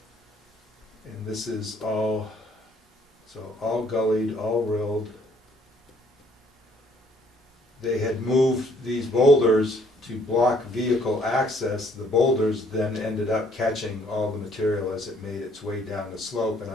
And this is all gullied, all rilled. They had moved these boulders to block vehicle access. The boulders then ended up catching all the material as it made its way down the slope, and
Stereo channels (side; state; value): both; normal; correlation 0.64